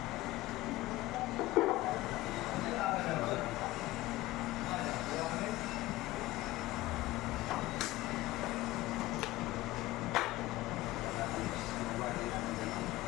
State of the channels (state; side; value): quieter; right; 17.8 dB